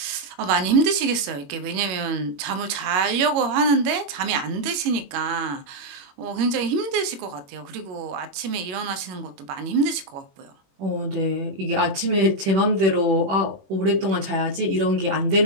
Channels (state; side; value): late; left; 21 ms